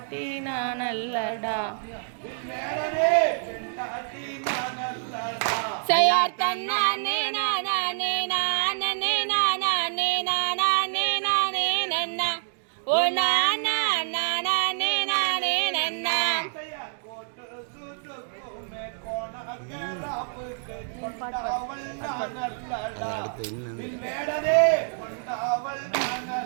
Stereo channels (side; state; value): left; silent; digital silence